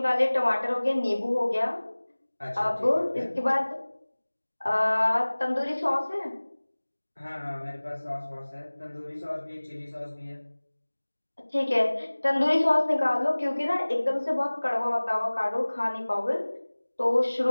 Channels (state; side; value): inverted; both; correlation -1.00